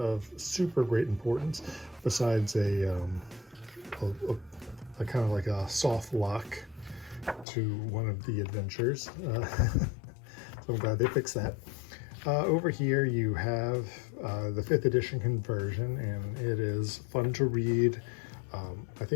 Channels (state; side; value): drops out; right; at 7.5 s